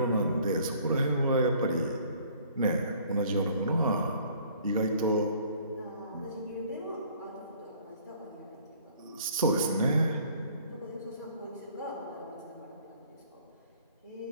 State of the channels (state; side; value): inverted; both; correlation -0.56